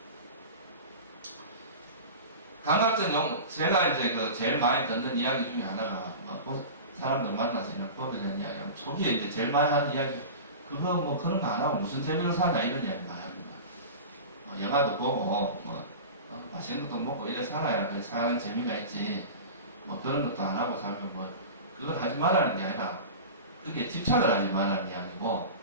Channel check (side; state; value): both; inverted; correlation -0.31